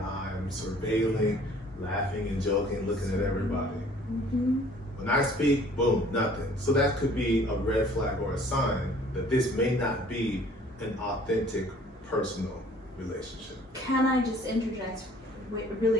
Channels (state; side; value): normal; both; correlation 0.54